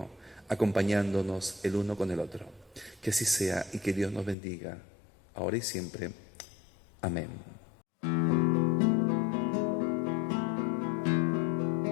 acompañándonos el uno con el otro. Que así sea y que Dios nos bendiga, ahora y siempre. Amén.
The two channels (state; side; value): drops out; right; at 4.4 s